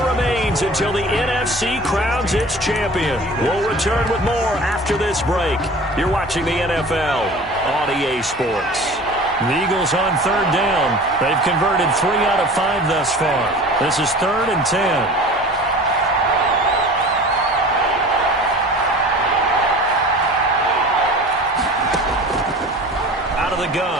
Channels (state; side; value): normal; both; correlation 0.41